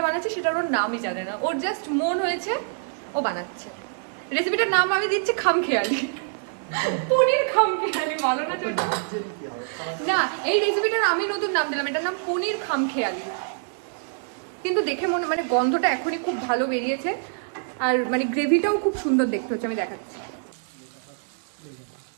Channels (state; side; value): silent; left; digital silence